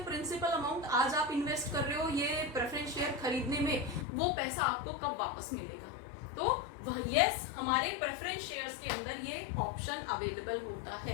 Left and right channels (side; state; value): right; drops out; at 4.0 s